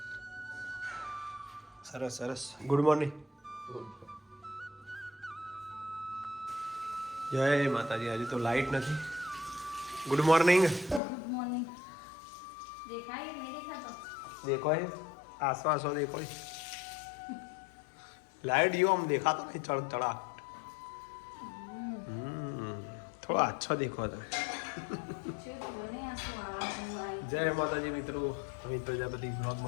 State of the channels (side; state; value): right; drops out; at 11.0 s